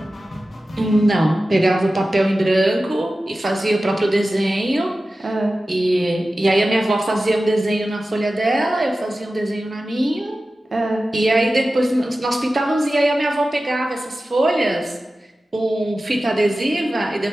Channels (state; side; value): normal; both; correlation 0.95